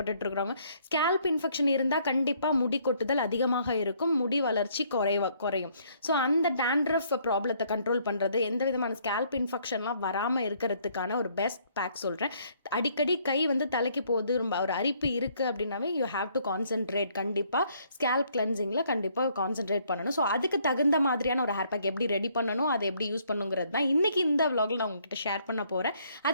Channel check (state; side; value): inverted; both; correlation -0.66